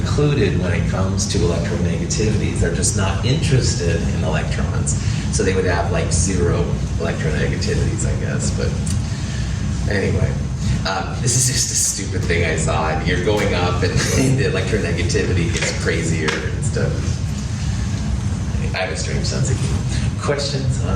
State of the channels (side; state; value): both; identical; correlation 1.00